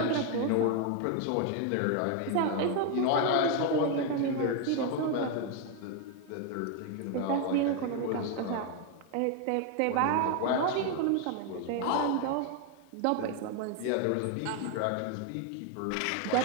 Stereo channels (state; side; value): different; both; correlation 0.01